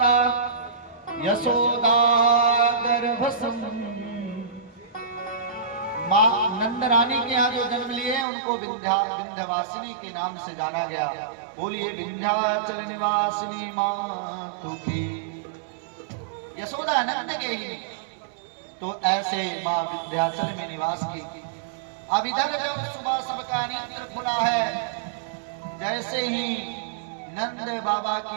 यशोदा गर्भसम। माँ नंद रानी के यहाँ जो जन्म लिए उनको विंध्यवासिनी के नाम से जाना गया। बोलिए विंध्याचल निवासिनी मातु की। यशोदा नंद के ही तो ऐसे माँ विंध्याचल में निवास की। अब इधर जब सुबह सबका नेत्र खुला है, जैसे ही नंद बाबा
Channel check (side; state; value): left; drops out; at 8.2 s